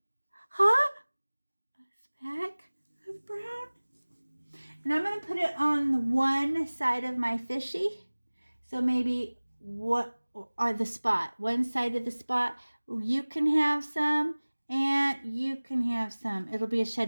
speck of brown. And I'm going to put it on one side of my fishy. So maybe the spot. One side of the spot. You can have some and you can have some. It'll be a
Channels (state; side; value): inverted; both; correlation -1.00